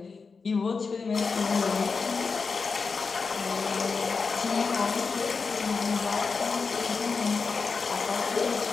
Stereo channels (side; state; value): right; quieter; 4.8 dB